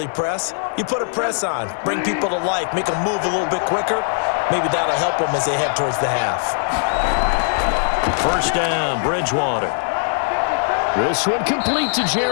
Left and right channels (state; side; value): silent; right; digital silence